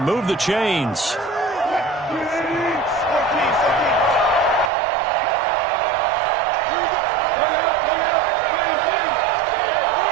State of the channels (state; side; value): drops out; left; at 4.7 s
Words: Move the chains.